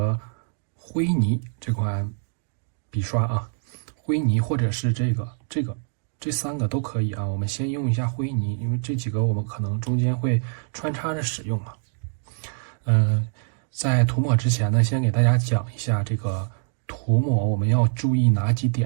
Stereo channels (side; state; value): left; silent; digital silence